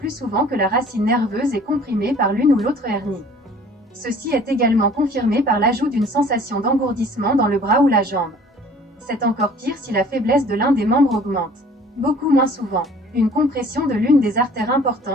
souvent que la racine nerveuse est comprimée par l'une ou l'autre hernie. Ceci est également confirmé par l'ajout d'une sensation d'engourdissement dans le bras ou la jambe. C'est encore pire si la faiblesse de l'un des membres augmente. Beaucoup moins souvent. Une compression de l'une des artères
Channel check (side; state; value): both; normal; correlation 0.51